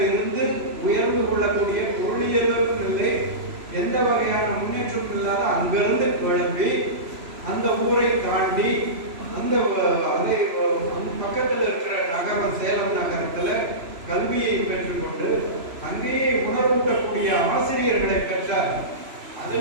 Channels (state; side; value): late; left; 3.0 ms